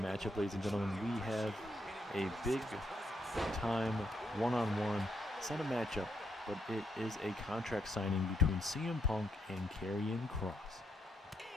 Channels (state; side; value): normal; both; correlation 0.76